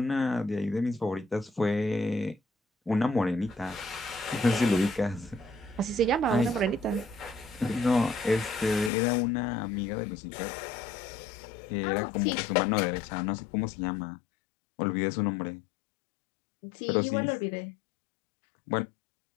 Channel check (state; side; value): drops out; right; at 8.9 s